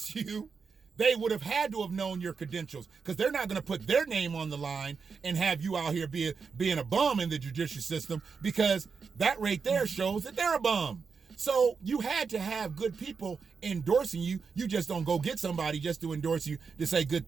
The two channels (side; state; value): left; quieter; 5.4 dB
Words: you, they would have had to have known your credentials, because they're not going to put their name on the line and have you out here being a bum in the judicial system, because that right there shows that they're a bum. So you had to have good people endorsing you. You just don't go get somebody just to endorse you to say good